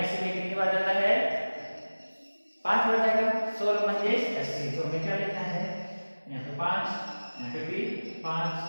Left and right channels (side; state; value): both; inverted; correlation -1.00